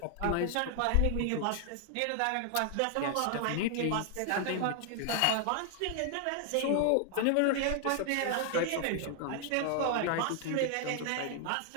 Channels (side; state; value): both; different; correlation 0.00